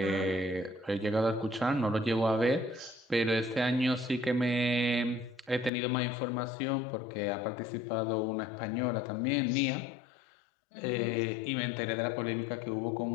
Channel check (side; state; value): right; drops out; at 5.7 s